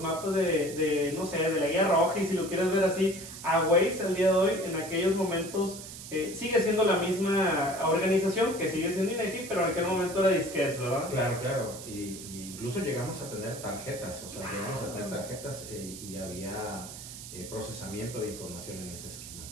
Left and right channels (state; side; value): noise; right; hiss, 12 dB below the sound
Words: mapas no sé, de la Guía Roja, y si lo quieres ver así, a Waze al día de hoy. En aquellos momentos sigue siendo la misma organización, que sigue siendo INEGI, pero en aquel momento era disquetes, ¿verdad? Claro, y incluso llegamos a tener tarjetas, y había procesamiento de información en ese esquema.